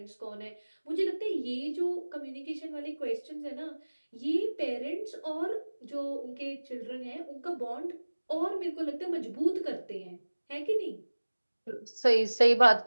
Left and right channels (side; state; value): both; inverted; correlation -1.00